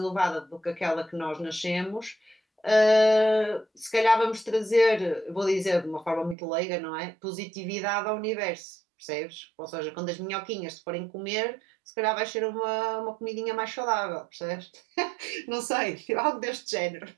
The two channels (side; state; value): left; drops out; at 6.4 s